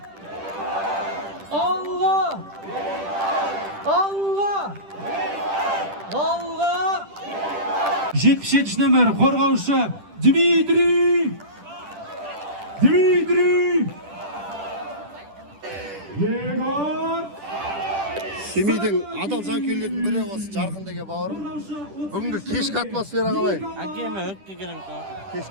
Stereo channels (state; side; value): late; left; 10 ms